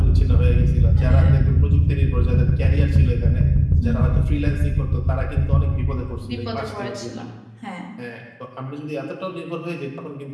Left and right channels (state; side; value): identical; both; correlation 1.00